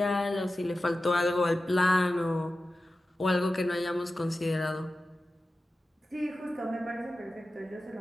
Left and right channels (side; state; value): both; normal; correlation 0.94